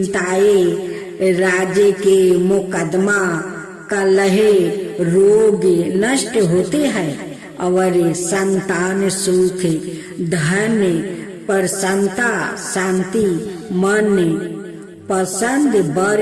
राजे के मुकदमा, कलह, रोग नष्ट होते हैं और संतान सुख, धन, प्रसन्नता, शांति, मन पसंद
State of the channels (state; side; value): identical; both; correlation 1.00